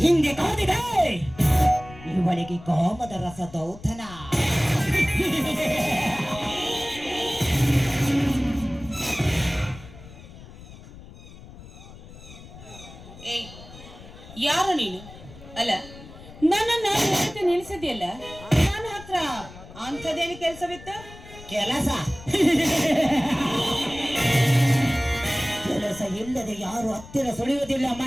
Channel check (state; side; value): noise; left; rumble, 18 dB below the sound